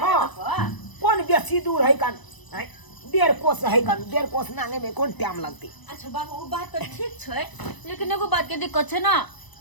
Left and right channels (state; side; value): late; right; 1.0 ms